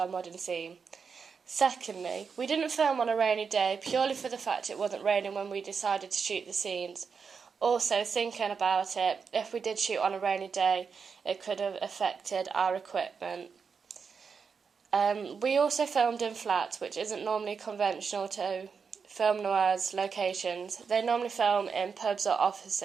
modern theme. Secondly, we didn't film on a rainy day purely for the fact it wasn't raining when we decided to shoot the scenes. Also, thinking about it, if we did shoot on a rainy day, it could have affected our equipment. We also filmed in flats, which isn't normally conventional to film noirs locations. They normally film in pubs or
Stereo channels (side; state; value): left; quieter; 5.8 dB